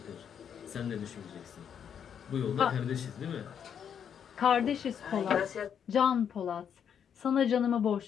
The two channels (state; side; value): quieter; right; 8.1 dB